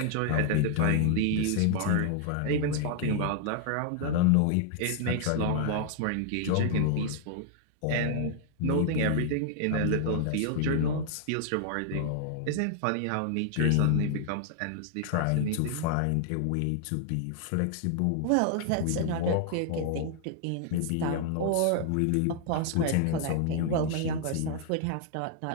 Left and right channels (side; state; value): both; different; correlation 0.00